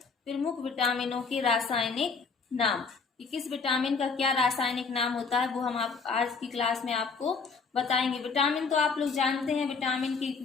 प्रमुख विटामिनों के रासायनिक नाम। कि किस विटामिन का क्या रासायनिक नाम होता है वो हम आप आज की क्लास में आपको बताएंगे। विटामिन तो आप लोग जानते हैं, विटामिन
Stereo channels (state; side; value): quieter; right; 4.9 dB